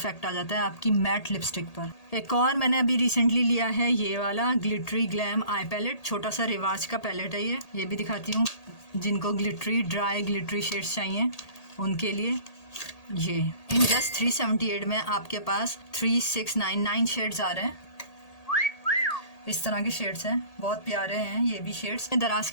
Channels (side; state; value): right; late; 1.8 ms